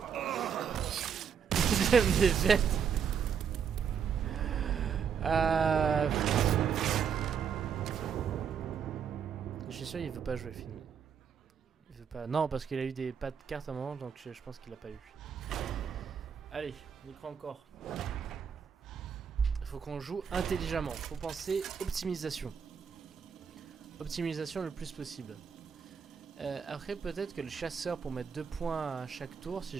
Deuxième défaite. Je suis sûr il veut pas jouer film. Il veut pas. Non, parce qu'il a eu des pas de cartes à un moment, donc je pense qu'il a pas eu. Allez, on y croit encore. Il faut qu'on joue intelligemment. Faut penser optimisation. Optimisation le plus possible. Après, peut-être que le chasseur pour mettre 2 points à chaque tour, si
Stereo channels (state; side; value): quieter; left; 7.2 dB